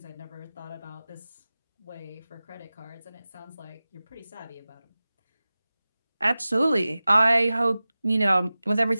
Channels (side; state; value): both; inverted; correlation -0.97